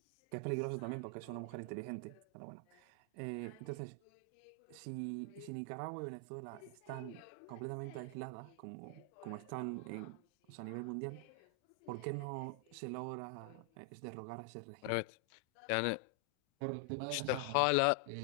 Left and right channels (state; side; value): different; both; correlation 0.00